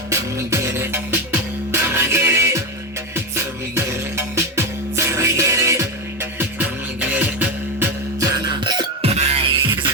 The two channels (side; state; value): both; normal; correlation 0.14